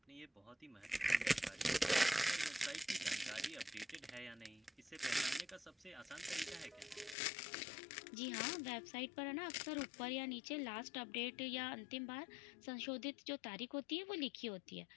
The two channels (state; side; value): drops out; right; at 7.2 s